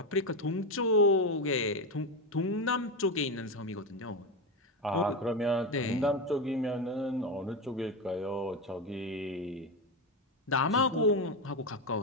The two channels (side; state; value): both; normal; correlation 0.13